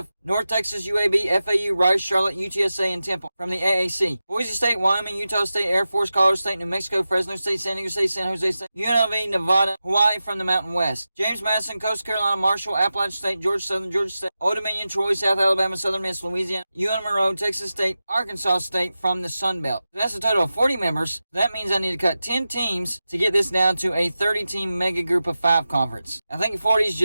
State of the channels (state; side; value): inverted; both; correlation -0.93